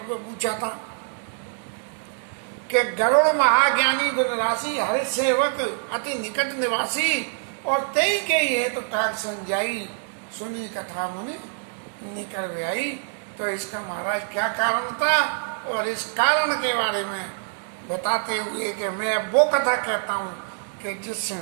पूछा था कि गरुड़ महाज्ञानी गुणराशि हरि सेवक अति निकट निवासी, और तई के ये तो काग संजाई सुनी कथा मुनि निकल आई। तो इसका महाराज क्या कारण था, और इस कारण के बारे में बताते हुए कि मैं वो कथा कहता हूँ कि जिससे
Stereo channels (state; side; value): silent; left; 62 dB below the other